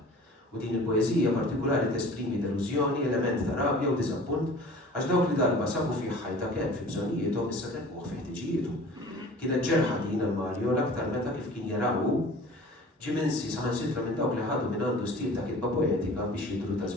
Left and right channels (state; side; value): normal; both; correlation 0.44